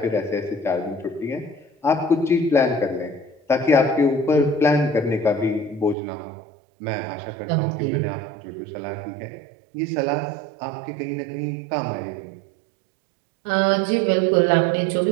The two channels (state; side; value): drops out; left; at 6.0 s